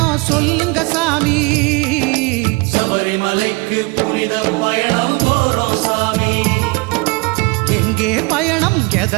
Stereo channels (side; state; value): left; quieter; 27.0 dB